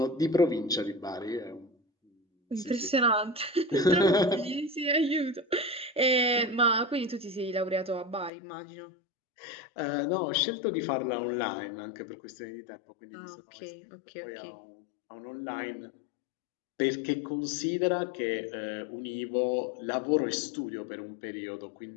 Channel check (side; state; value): right; drops out; at 8.3 s